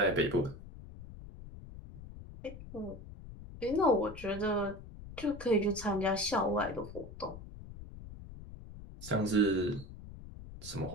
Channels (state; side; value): noise; left; rumble, 14 dB below the sound